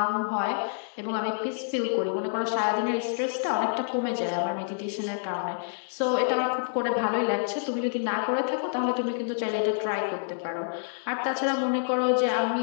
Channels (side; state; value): right; silent; digital silence